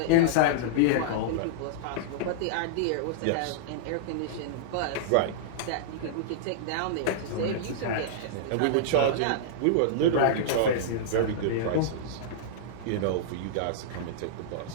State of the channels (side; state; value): both; different; correlation -0.02